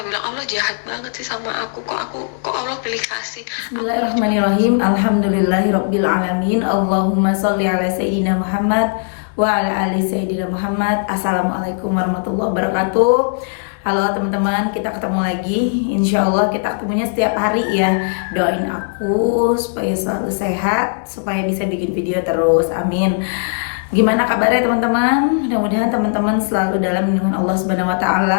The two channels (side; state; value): right; silent; digital silence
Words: bilang, Allah jahat banget sih sama aku. Kok Allah pilih kasih aku. Bismillahirrahmanirrahim. Alhamdulillahirabbil alamin. Allahumma sholli ala sayyidina Muhammad wa ala ali sayyidina Muhammad. Assalamualaikum warahmatullahi wabarakatuh. Halo teman-teman, kita ketemu lagi. Insya Allah kita ketemunya setiap hari ya. Doain aku supaya selalu sehat, supaya bisa bikin video terus. Amin. Gimana kabarnya teman-teman? Mudah-mudahan teman-teman selalu dalam lindungan Allah Subhanahu wa